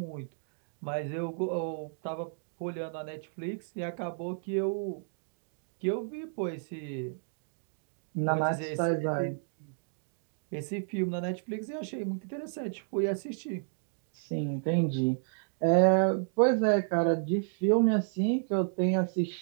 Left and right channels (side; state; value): left; silent; digital silence